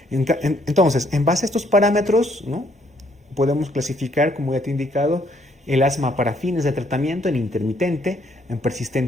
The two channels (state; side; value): normal; both; correlation 0.68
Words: Entonces, en base a estos parámetros, ¿no?, podemos clasificar, como ya te he indicado, el asma para fines de tratamiento en intermitente, en